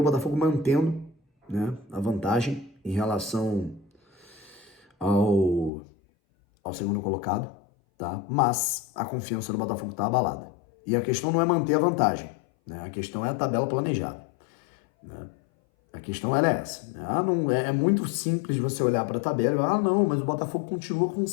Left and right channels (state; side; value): drops out; right; at 5.7 s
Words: Botafogo mantendo, né, a vantagem em relação ao segundo colocado, tá? Mas a confiança do Botafogo tá abalada. E a questão não é manter a vantagem, né? A questão é a tabela planejada, né? A questão era essa. Não, é muito simples você olhar para a tabela e falar, não, mas o Botafogo continua com